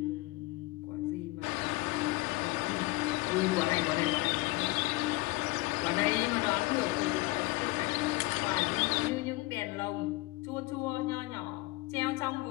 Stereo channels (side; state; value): right; quieter; 21.9 dB